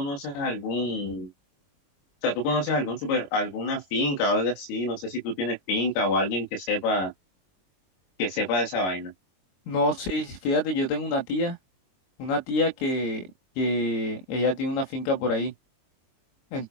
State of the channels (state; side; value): late; right; 22 ms